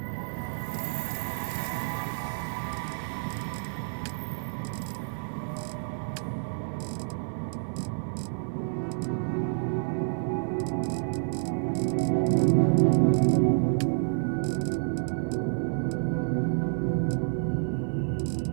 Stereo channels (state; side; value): silent; left; digital silence